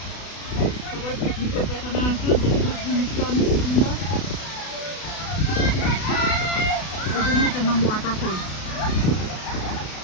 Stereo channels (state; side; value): late; right; 32 ms